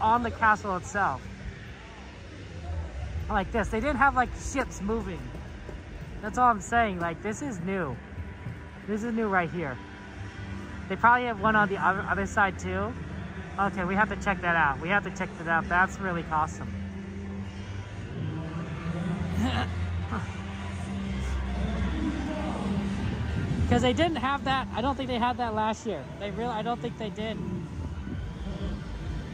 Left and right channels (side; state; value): both; identical; correlation 1.00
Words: the castle itself. Like this. They didn't have like ships moving. That's all I'm saying. Like, this is new. This is new right here. They probably have one on the other side too. Okay, we have to check that out. We have to check that out. That's really awesome. Because they didn't have that. I don't think they had that last year. I don't think they did.